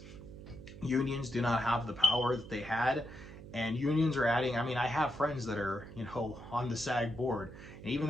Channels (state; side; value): noise; right; hum, 15 dB below the sound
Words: unions do not have the power that they had. And unions are adding, I mean, I have friends that are, you know, on the SAG board, and even